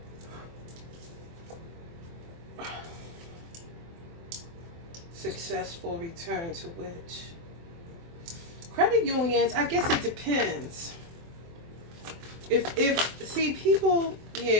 Successful return to which? Credit unions, I guess it depends. If see people,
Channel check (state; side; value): late; left; 24 ms